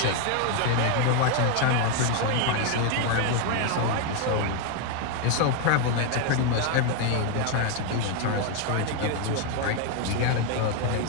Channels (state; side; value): different; both; correlation 0.01